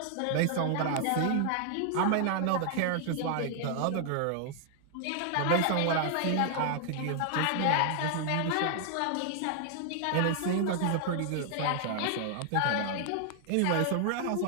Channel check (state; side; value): different; both; correlation 0.00